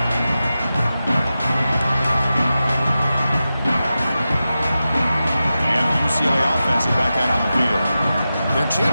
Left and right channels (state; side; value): inverted; both; correlation -0.92